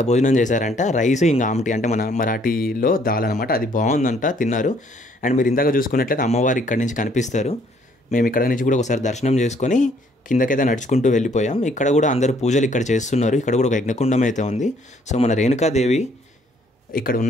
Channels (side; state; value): both; normal; correlation 0.64